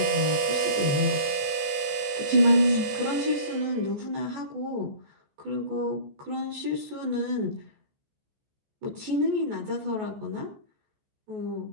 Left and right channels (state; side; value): late; left; 14 ms